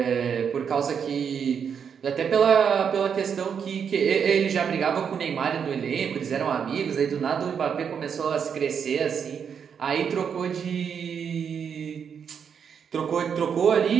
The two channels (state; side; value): quieter; left; 7.2 dB